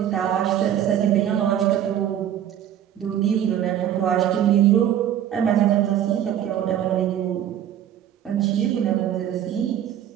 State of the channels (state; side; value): quieter; left; 10.5 dB